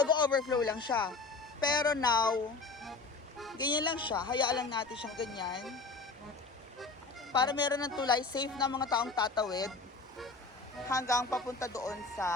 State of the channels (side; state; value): right; quieter; 4.0 dB